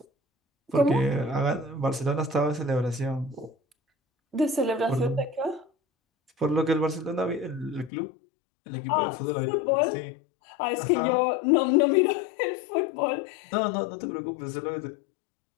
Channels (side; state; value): right; drops out; at 7.9 s